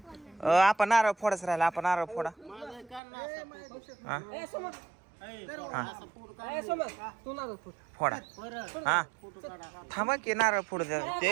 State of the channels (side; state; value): left; drops out; at 3.0 s